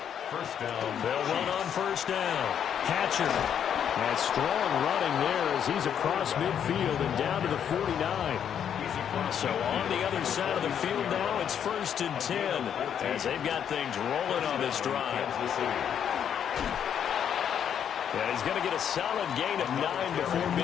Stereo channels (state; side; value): quieter; right; 8.7 dB